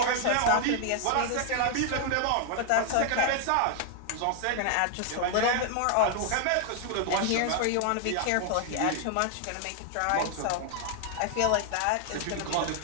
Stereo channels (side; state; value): both; different; correlation 0.00